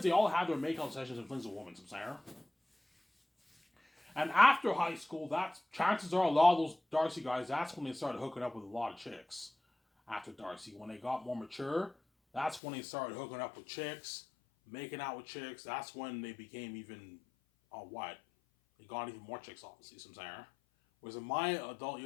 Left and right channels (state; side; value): drops out; right; at 12.6 s